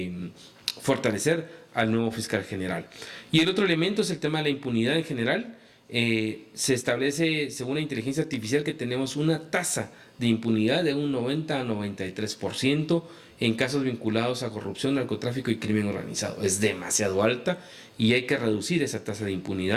fortalecer al nuevo fiscal general. Y el otro elemento es el tema de la impunidad en general. Se establece, según la inteligencia artificial, que tenemos una tasa de impunidad de un 90 a 93% en casos vinculados a corrupción, narcotráfico y crimen organizado. Es demasiado alta y hay que reducir esa tasa de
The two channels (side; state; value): both; identical; correlation 1.00